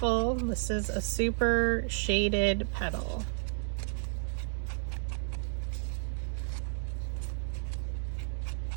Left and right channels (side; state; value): left; silent; digital silence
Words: This is a super shaded petal.